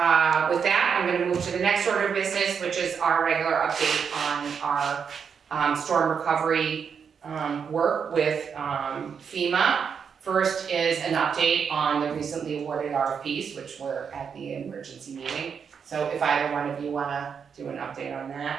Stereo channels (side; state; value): left; quieter; 6.7 dB